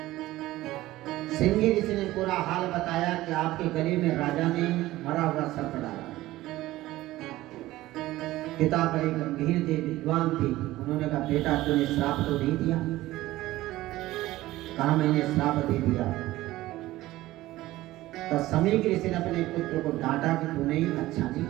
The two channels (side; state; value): left; quieter; 16.8 dB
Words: श्रृंगी ऋषि ने पूरा हाल बताया कि आपके गले में राजा ने मरा हुआ सर्प डाला। पिता बड़े गंभीर थे, विद्वान थे। उन्होंने कहा, बेटा तूने श्राप तो नहीं दिया? कहा, मैंने श्राप दे दिया। तो समय के ऋषि ने अपने पुत्र को डांटा कि तूने अच्छा नहीं